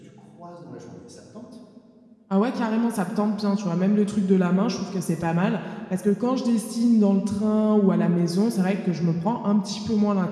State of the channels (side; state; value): both; identical; correlation 1.00